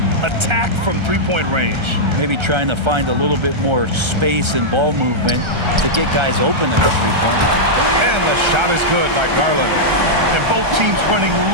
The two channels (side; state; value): left; late; 1.3 ms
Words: Attack from three-point range. Maybe trying to find a little bit more space and ball movement to get guys open at the three-point line. And the shot is good by Garland. And both teams running